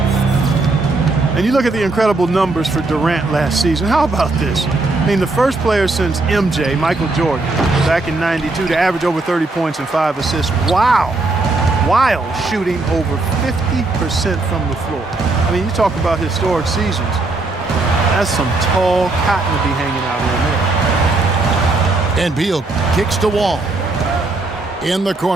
And you look at the incredible numbers for Durant last season. How about this? I mean, the first player since MJ, Michael Jordan, back in '92 to average over 30 points and 5 assists. Wow. While shooting over 50% from the floor. I mean, you talk about historic seasons. That's some tall cotton to be hanging out in there. And Beal kicks to Wall. In the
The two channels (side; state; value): left; quieter; 3.3 dB